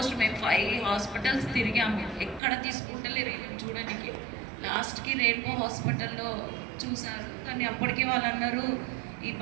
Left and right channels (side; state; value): left; drops out; at 2.4 s